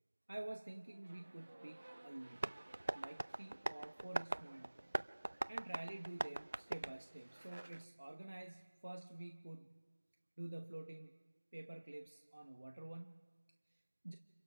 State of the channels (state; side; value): inverted; both; correlation -1.00